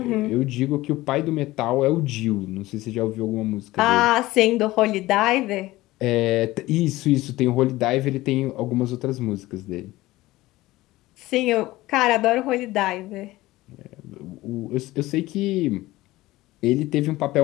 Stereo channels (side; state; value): right; quieter; 18.0 dB